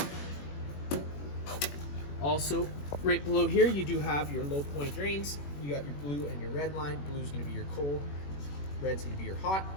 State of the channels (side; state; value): right; late; 21 ms